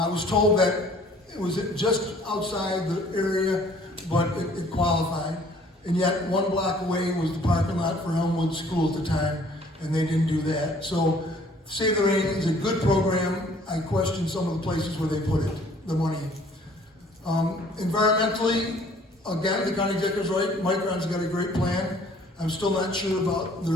was told that it was just outside the area, but it qualified. And yet, 1 block away was the parking lot for Elmwood School at the time, and they didn't do that. So, Save the Rain is a good program. I question some of the places where they put it, the money. Environmentally, again, the county executive's right. Micron's got a great plan. I'm still not sure about the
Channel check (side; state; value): both; normal; correlation 0.56